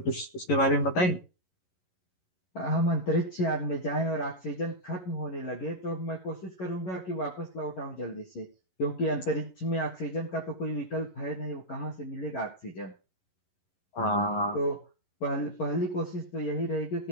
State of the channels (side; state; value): right; late; 11 ms